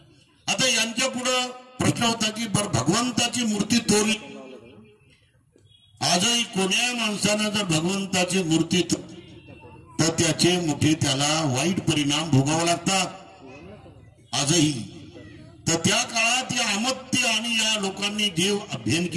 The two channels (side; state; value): both; identical; correlation 1.00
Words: आता यांच्या पुढं प्रश्न होता की बर भगवंताची मूर्ती तोडली. आजही कोण्या माणसानं जर भगवंताची मूर्ती तर त्याचे मोठे त्याला वाईट परिणाम भोगावे लागतात आजही. तर त्या काळात या अमत्य आणि या लोकांनी जे अध्ययन